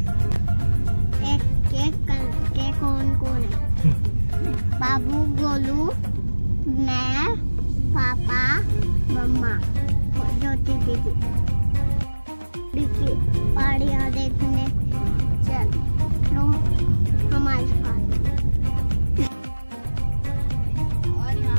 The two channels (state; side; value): inverted; both; correlation -1.00